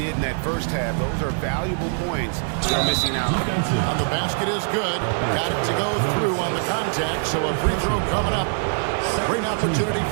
in that first half. Those are valuable points they're missing out. On the basket is good. Got it to go through on the contact, so a free throw coming up. Great opportunity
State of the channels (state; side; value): silent; left; digital silence